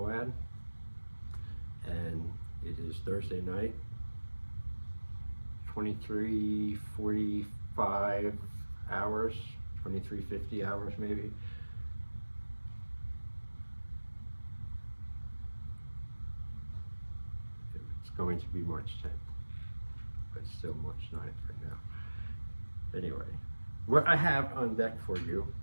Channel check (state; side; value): inverted; both; correlation -1.00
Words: and it is Thursday night, 23:45 hours, 23:50 hours maybe. It's going to be March 10th, but still March 9th right now. Anyway, what I have on deck for you